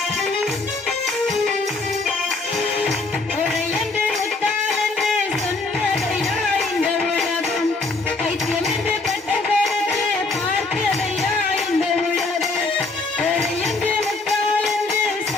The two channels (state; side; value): quieter; right; 3.5 dB